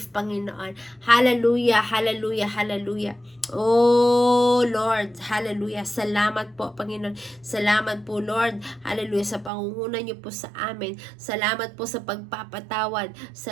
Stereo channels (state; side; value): drops out; left; at 9.5 s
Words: Panginoon. Hallelujah, hallelujah, hallelujah. Oh, Lord, hallelujah, salamat po, Panginoon. Salamat po, Lord, hallelujah, sa pangunguna niyo po sa amin. Salamat po sa pagpapatawad.